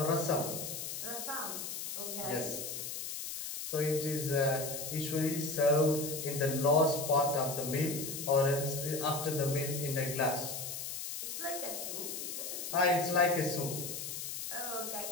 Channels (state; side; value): noise; left; hiss, 6 dB below the sound